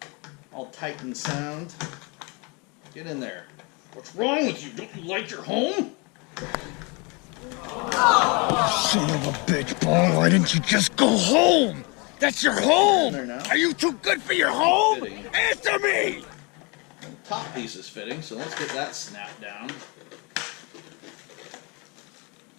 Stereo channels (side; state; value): right; quieter; 30.0 dB